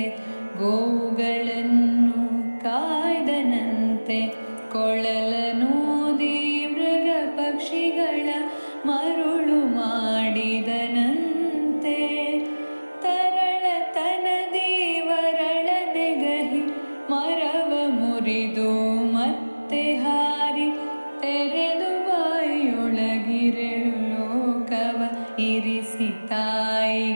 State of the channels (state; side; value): inverted; both; correlation -1.00